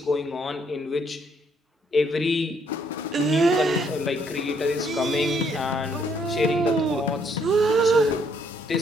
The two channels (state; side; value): normal; both; correlation 0.69